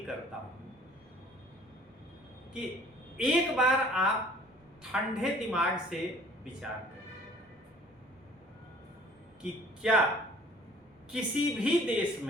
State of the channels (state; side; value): normal; both; correlation 0.52